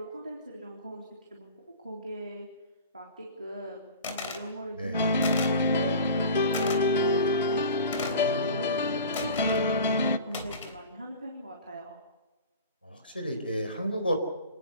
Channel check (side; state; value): both; inverted; correlation -0.40